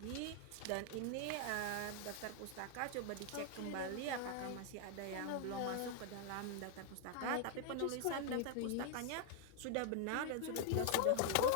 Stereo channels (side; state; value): both; different; correlation 0.00